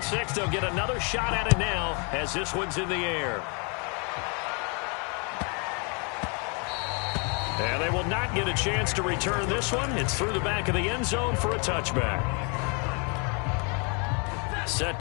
six. They'll get another shot at it now as this one's in the air. And they will not get a chance to return this one. It's through the back of the end zone for a touchback. Set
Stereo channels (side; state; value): right; quieter; 34.8 dB